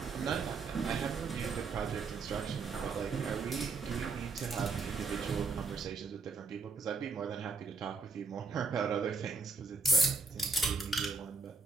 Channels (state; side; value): quieter; left; 4.5 dB